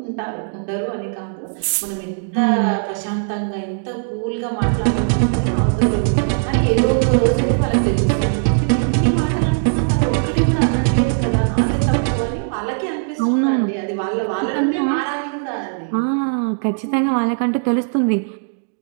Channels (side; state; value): left; silent; digital silence